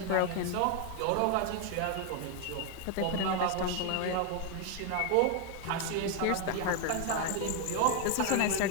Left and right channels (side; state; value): both; different; correlation 0.01